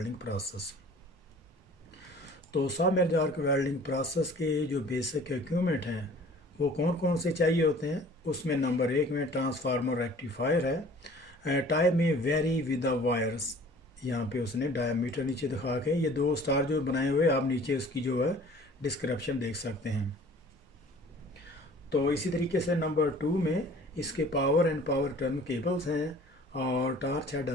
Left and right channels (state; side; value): normal; both; correlation 0.49